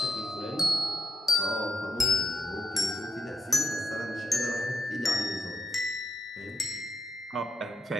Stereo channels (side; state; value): both; normal; correlation 0.83